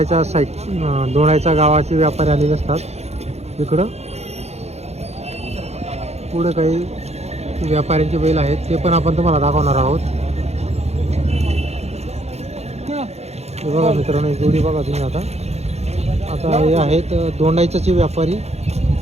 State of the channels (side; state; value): left; late; 0.31 ms